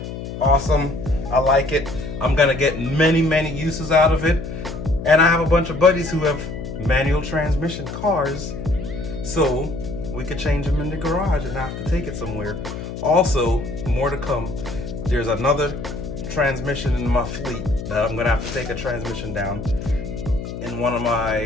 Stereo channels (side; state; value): left; noise; hum, 8 dB below the sound